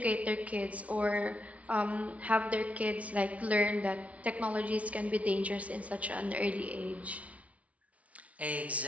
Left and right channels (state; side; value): late; left; 0.066 ms